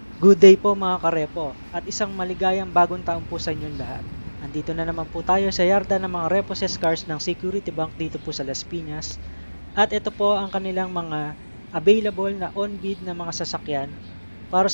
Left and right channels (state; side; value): inverted; both; correlation -1.00